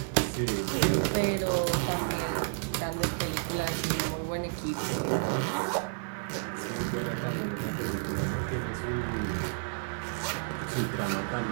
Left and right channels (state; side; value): silent; left; digital silence